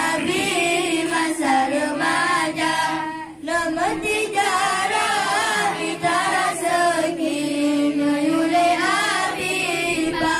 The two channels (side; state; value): both; identical; correlation 1.00